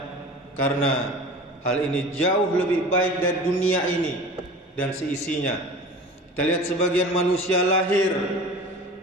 karena hal ini jauh lebih baik dari dunia ini dan seisinya. Kita lihat sebagian manusia lahir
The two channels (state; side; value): normal; both; correlation 0.38